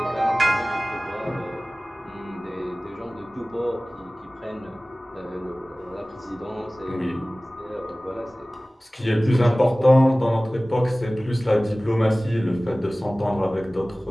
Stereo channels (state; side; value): normal; both; correlation 0.98